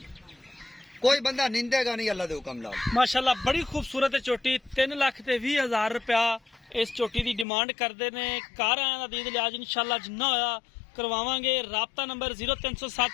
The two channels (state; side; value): drops out; right; at 7.5 s